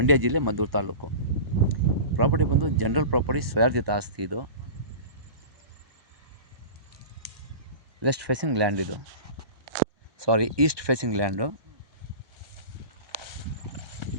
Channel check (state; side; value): late; left; 1.2 ms